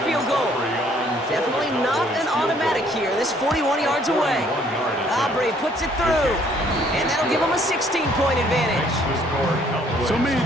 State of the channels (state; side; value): normal; both; correlation 0.62